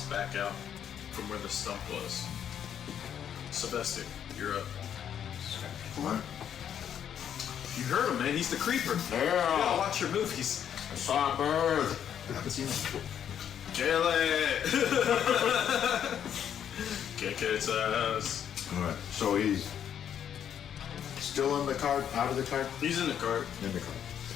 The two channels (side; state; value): right; quieter; 9.2 dB